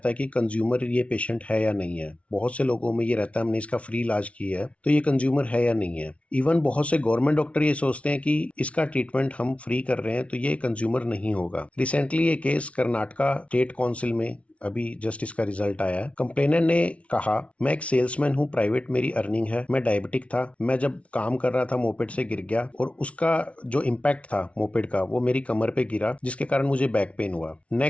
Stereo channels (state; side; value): late; right; 0.063 ms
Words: है कि कंज्यूमर ये पेशेंट है या नहीं है। बहुत से लोगों में ये रहता है हमने इसका फ्री इलाज किया है तो ये कंज्यूमर है या नहीं है। इवन बहुत से गवर्नमेंट डॉक्टर ये सोचते हैं कि इसका ट्रीटमेंट हम फ्री कर रहे हैं तो ये कंज्यूमर नहीं होगा। रिसेंटली ये केस कर्नाटका स्टेट काउंसिल में अभी जस्ट इसका रिजल्ट आया है। कंप्लेनर ने कहा, मैं एक सेल्समैन हूँ, प्राइवेट मेरी अर्निंग है, मैं डायबिटिक था, मैं जब काम कर रहा था मोपेड से गिर गया और उसका जो इम्पैक्ट था मोपेड का वो मेरी कमर पे गिरा, जिसके कारण मुझे बैक पेन हुआ।